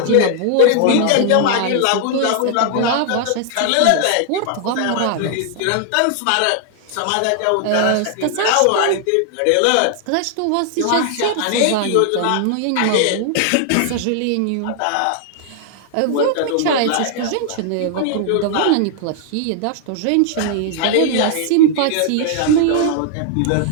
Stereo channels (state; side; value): different; both; correlation 0.00